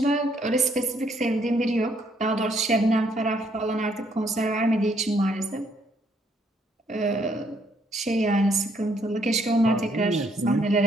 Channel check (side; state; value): both; normal; correlation 0.69